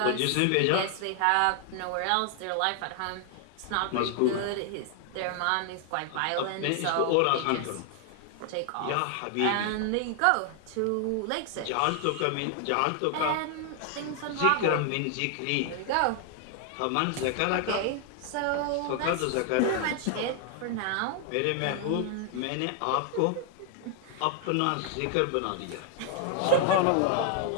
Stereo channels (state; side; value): different; both; correlation 0.00